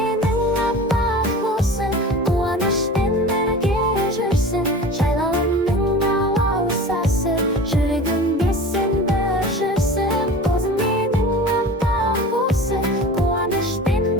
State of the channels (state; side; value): normal; both; correlation 0.37